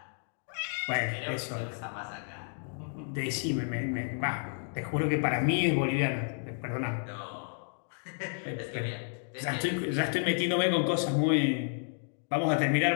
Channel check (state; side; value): silent; right; 57 dB below the other